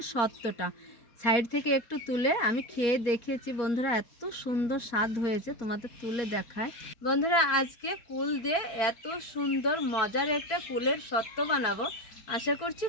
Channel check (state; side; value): late; right; 4.6 ms